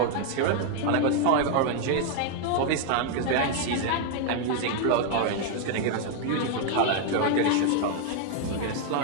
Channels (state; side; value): different; both; correlation 0.00